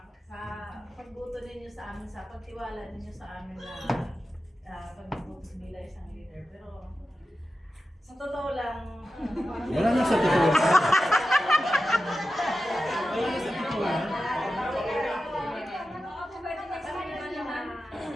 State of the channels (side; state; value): both; normal; correlation 0.92